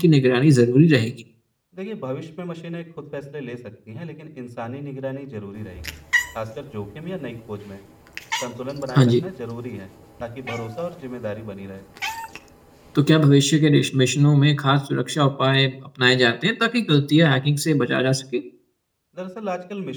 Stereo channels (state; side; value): identical; both; correlation 1.00